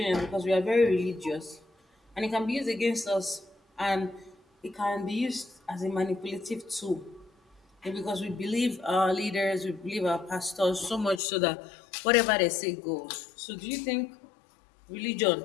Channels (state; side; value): drops out; right; at 11.2 s